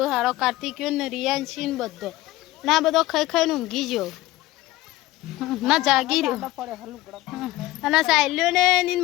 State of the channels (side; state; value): right; quieter; 17.6 dB